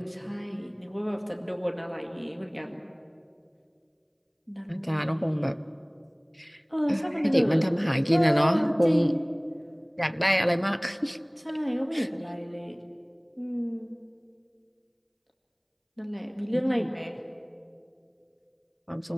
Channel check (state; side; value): identical; both; correlation 1.00